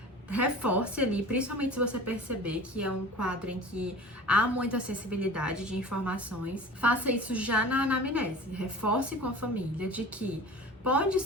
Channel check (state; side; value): normal; both; correlation 0.39